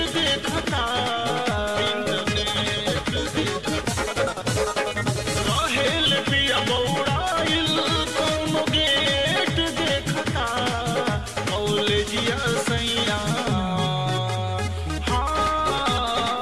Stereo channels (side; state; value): both; identical; correlation 1.00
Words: देखता राहेल पिया बौड़ाइल कौनो गेट देखता कॉलेजिया सैया